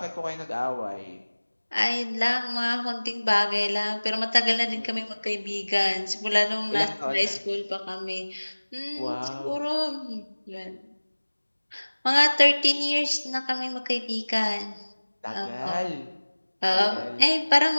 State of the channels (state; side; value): inverted; both; correlation -1.00